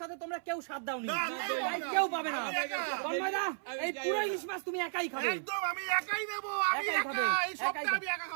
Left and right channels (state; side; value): silent; left; 55 dB below the other